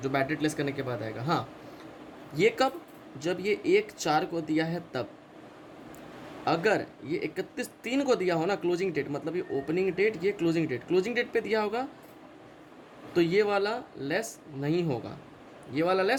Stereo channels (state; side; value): identical; both; correlation 1.00